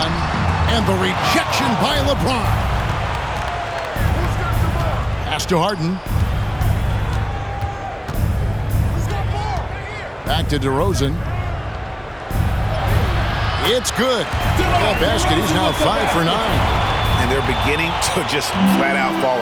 And the rejection by LeBron. Pass to Harden. Back to DeRozan. It's good. That basket, he's now 5 for 9. And they're beginning to just flat out fall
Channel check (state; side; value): identical; both; correlation 1.00